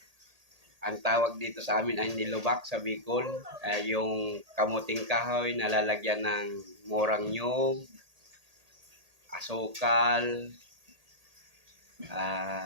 Ang tawag dito sa amin ay nilubak sa Bicol. Yung kamuting kahoy na lalagyan ng murang nyog, asukal,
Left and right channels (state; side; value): late; left; 1.8 ms